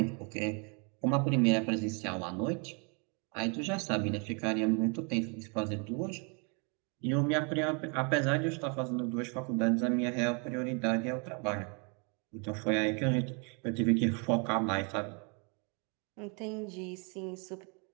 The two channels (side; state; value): left; quieter; 35.5 dB